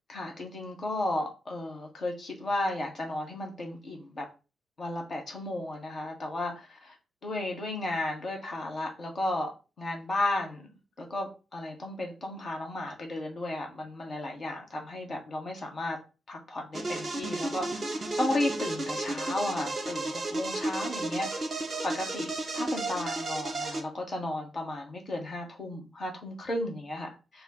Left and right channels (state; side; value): normal; both; correlation 0.85